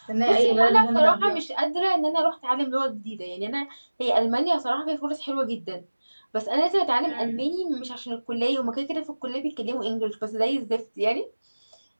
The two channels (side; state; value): both; inverted; correlation -1.00